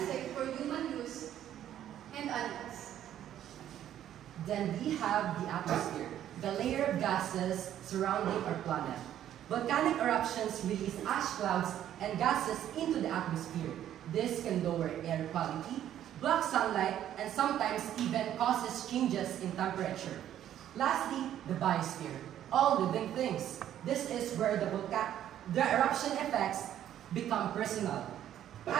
for human use and animals. Then we have the atmosphere, the layer of gases surrounding our planet. Volcanic eruptions release ash clouds and gases into the atmosphere. This can lower air quality, block sunlight, and sometimes even causes changes in temperature. Lastly, the biosphere, all living things. This is where the eruption effects become personal.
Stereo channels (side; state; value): left; quieter; 11.2 dB